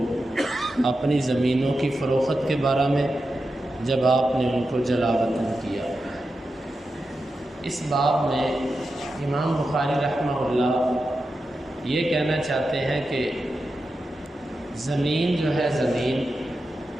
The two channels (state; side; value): normal; both; correlation 0.90